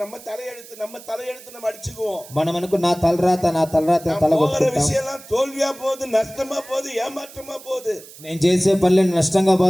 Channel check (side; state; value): right; noise; hiss, 19 dB below the sound